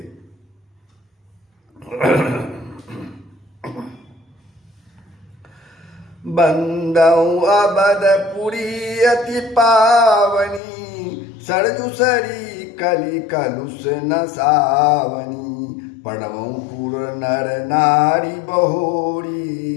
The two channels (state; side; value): drops out; right; at 10.6 s